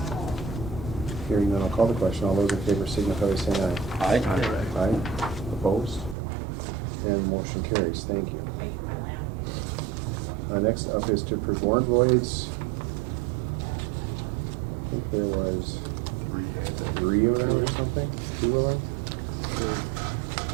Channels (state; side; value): drops out; left; at 6.2 s